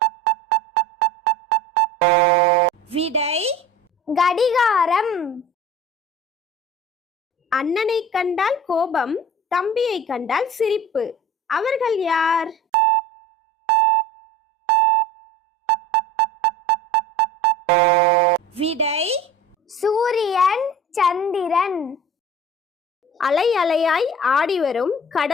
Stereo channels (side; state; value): both; normal; correlation 0.40